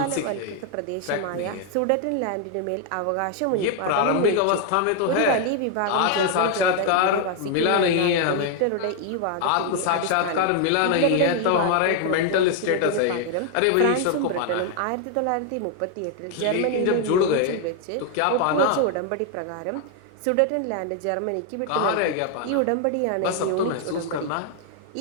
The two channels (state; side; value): different; both; correlation 0.00